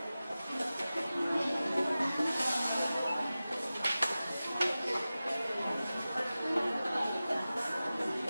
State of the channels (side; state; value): both; inverted; correlation -0.96